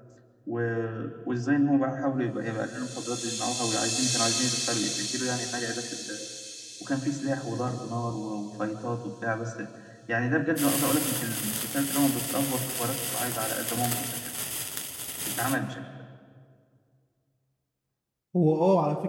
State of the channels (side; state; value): both; identical; correlation 1.00